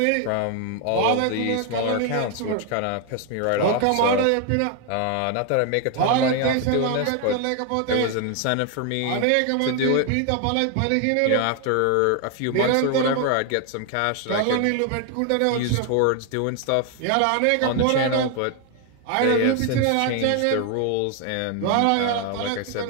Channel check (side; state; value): both; different; correlation 0.01